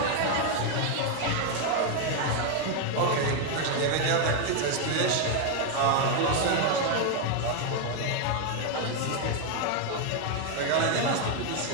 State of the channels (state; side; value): different; both; correlation 0.01